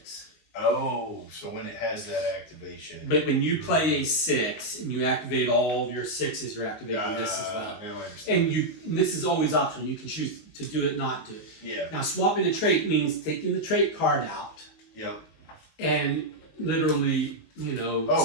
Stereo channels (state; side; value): late; right; 19 ms